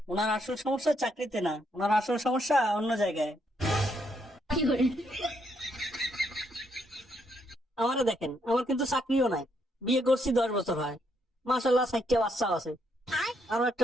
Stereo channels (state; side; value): normal; both; correlation 0.75